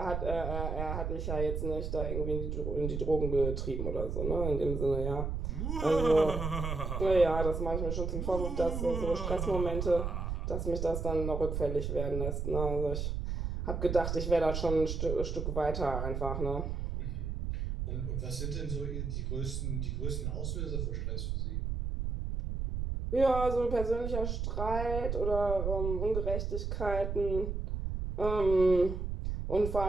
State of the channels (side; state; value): right; noise; rumble, 2 dB below the sound